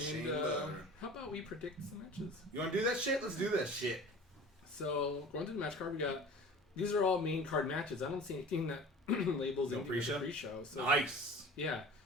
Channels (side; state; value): both; normal; correlation 0.41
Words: Chamber. how about we predict some matches? You want to do that shit? Let's do that shit. So going through the match card, we got these are all main card matches. I don't see anything that labels No anything as a pre-show? pre-show. So Nice. yeah,